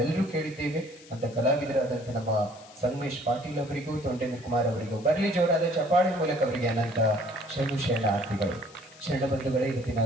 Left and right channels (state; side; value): noise; left; hiss, 22 dB below the sound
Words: ಕೇಳಿದ್ದೇವೆ. ಅಂತ ಕಲಾವಿದರಾದಂಥ ನಮ್ಮ ಸಂಗಮೇಶ್ ಪಾಟೀಲ್ ಅವರಿಗೂ ತೊಂಡೇಂದ್ರ ಕುಮಾರ್ ಅವರಿಗೂ ಬರಲಿ ಜೋರಾದ ಚಪಾಳಿ ಮೂಲಕ ಅವರಿಗೆ ಅನಂತ ಶರಣಾರ್ಥಿಗಳು. ಶರಣಬಂಧುಗಳೇ, ಇವತ್ತಿನ